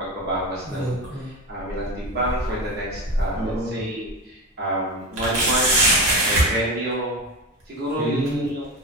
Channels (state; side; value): normal; both; correlation 0.22